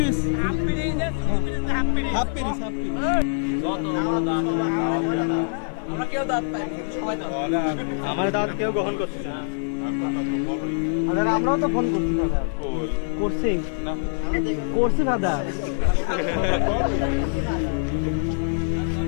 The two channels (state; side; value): silent; right; 60 dB below the other